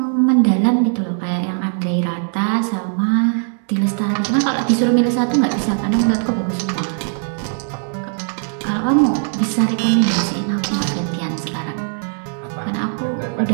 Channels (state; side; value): silent; left; 66 dB below the other